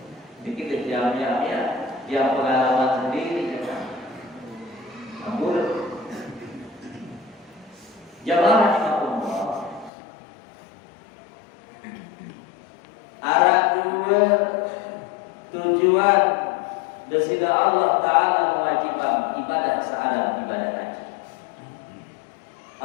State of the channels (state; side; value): drops out; right; at 9.9 s